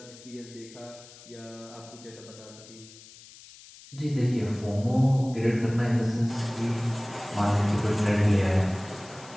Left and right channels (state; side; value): noise; left; hiss, 20 dB below the sound